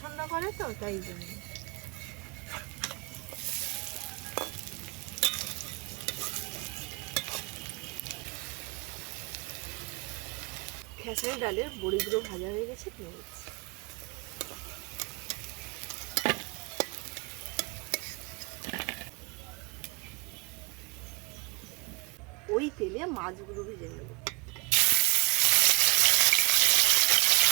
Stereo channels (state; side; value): quieter; left; 29.9 dB